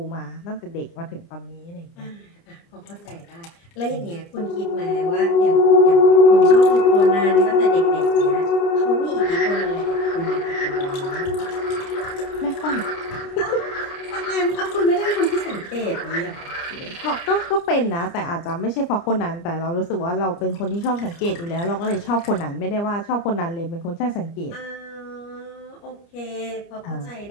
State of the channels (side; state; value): right; late; 29 ms